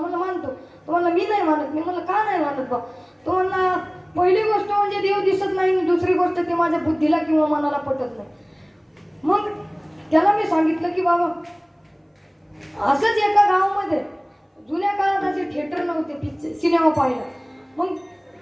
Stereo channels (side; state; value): both; identical; correlation 1.00